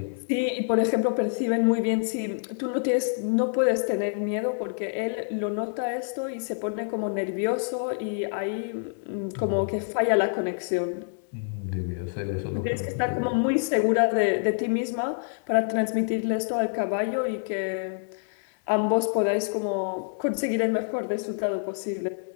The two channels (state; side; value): silent; right; 60 dB below the other